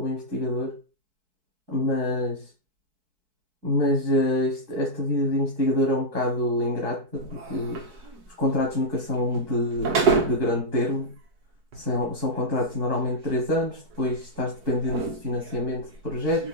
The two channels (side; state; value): left; late; 4.6 ms